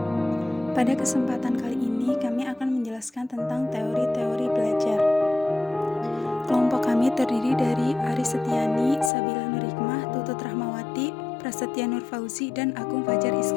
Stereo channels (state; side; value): drops out; right; at 9.1 s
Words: Pada kesempatan kali ini kami akan menjelaskan tentang teori-teori belajar. Kelompok kami terdiri dari Ari Setiani, Sabila Nurhikmah, Tutut Rahmawati, Prasetya Nur Fauzi, dan Agung Fajar